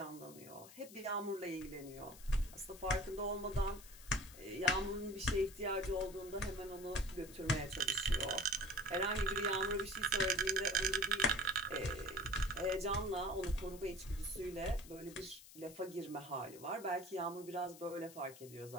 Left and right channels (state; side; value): noise; left; hiss, 18 dB below the sound